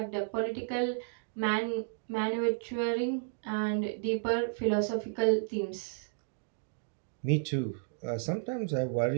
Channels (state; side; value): silent; left; digital silence